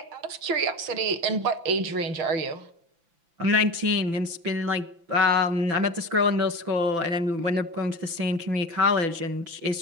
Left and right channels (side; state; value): left; late; 5.9 ms